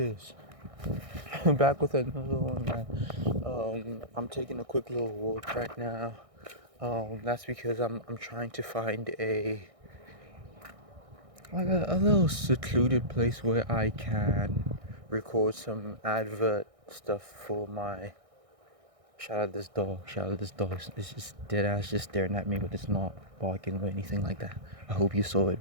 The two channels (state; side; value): late; left; 1.6 ms